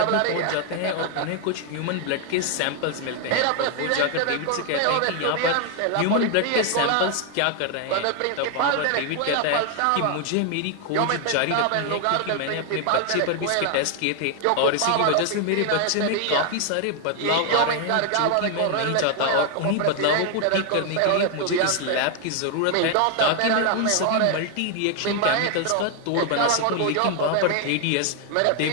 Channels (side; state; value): both; different; correlation 0.00